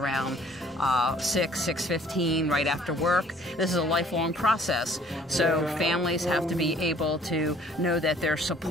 6:15 right after work. This is a lifelong process, so families have to be able to know that there's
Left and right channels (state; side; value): normal; both; correlation 0.56